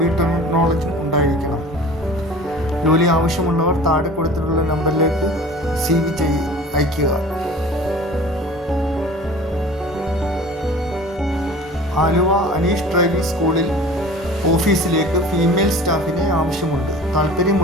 നോളജും ഉണ്ടായിരിക്കണം. ജോലി ആവശ്യമുള്ളവർ താഴെ കൊടുത്തിട്ടുള്ള നമ്പറിലേക്ക് CV അയയ്ക്കുക. ആലുവ അനീഷ് ഡ്രൈവിംഗ് സ്കൂളിൽ ഓഫീസിലേക്ക് ഫീമെയിൽ സ്റ്റാഫിനെ ആവശ്യമുണ്ട്.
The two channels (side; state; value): both; normal; correlation 0.42